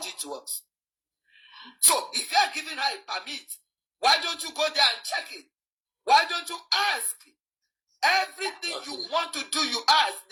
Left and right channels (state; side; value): identical; both; correlation 1.00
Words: to us. So if you are giving her a permit, why don't you go there and check it? Why don't you ask? Everything you want to do, you ask.